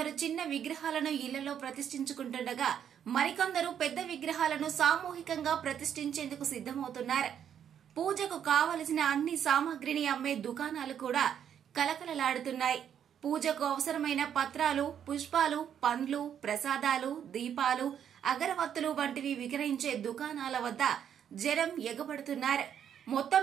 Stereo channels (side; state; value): left; quieter; 8.9 dB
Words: చిన్న విగ్రహాలను ఇళ్లలో ప్రతిష్ఠించుకుంటుండగా మరికొందరు పెద్ద విగ్రహాలను సామూహికంగా ప్రతిష్ఠించేందుకు సిద్దమవుతున్నారు. పూజకు కావలసిన అన్ని సామాగ్రిని అమ్మే దుకాణాలు కూడా కలకలలాడుతున్నాయి. పూజకు అవసరమైన పత్రాలు, పుష్పాలు, పండ్లు, ప్రసాదాలు, దీపాలు, అగరవత్తులు వంటివి విక్రయించే దుకాణాల వద్ద జనం ఎగబడుతున్నారు. మొత్తం